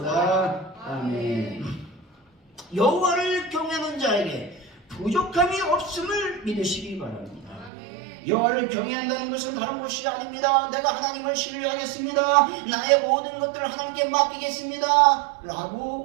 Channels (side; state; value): left; drops out; at 7.7 s